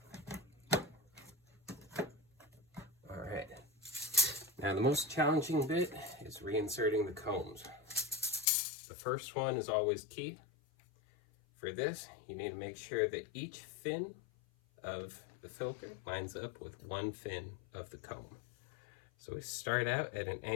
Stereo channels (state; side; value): drops out; right; at 8.5 s